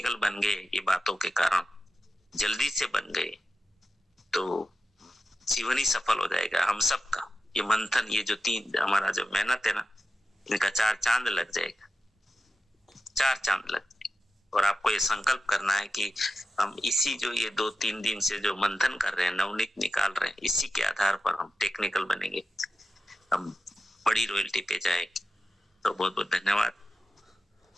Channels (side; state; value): both; normal; correlation 0.92